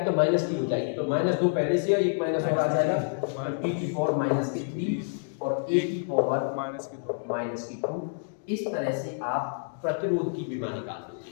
तो -T हो जाएगी, तो -2 पहले से है, एक माइनस और आ जाएगा, T⁻³ और A⁻²। इस तरह से आप प्रतिरोध की विमा निकाल दोगे।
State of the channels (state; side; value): silent; right; digital silence